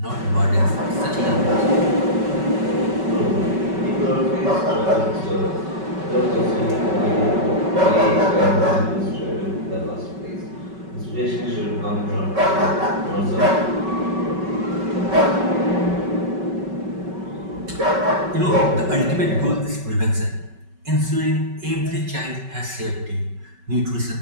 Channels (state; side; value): late; left; 5.3 ms